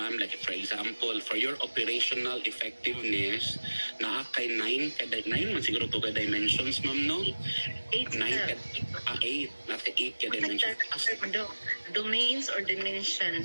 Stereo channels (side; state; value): both; inverted; correlation -1.00